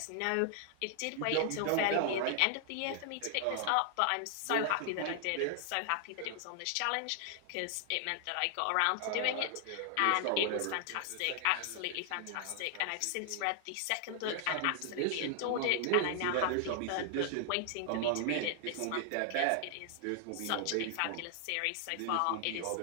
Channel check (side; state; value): both; different; correlation 0.00